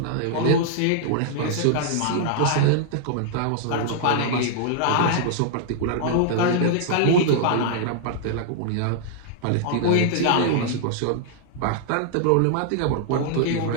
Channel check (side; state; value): both; different; correlation -0.01